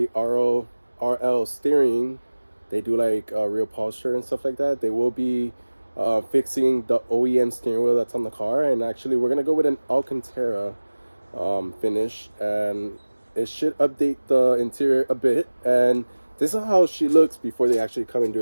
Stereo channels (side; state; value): both; inverted; correlation -1.00